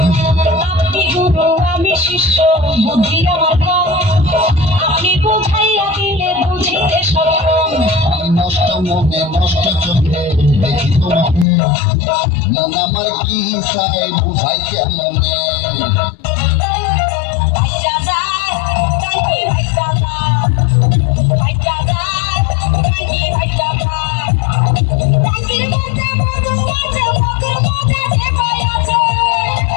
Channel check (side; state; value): right; drops out; at 11.5 s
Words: আপনি গুরু আমি শিষ্য বুদ্ধি আমার কম আপনি বুঝাইয়া দিলে বুঝিতে সক্ষম আমি নষ্ট মনে নষ্ট চোখে দেখি তোমাকে মন আমার কি চাই বুঝাই কেমনে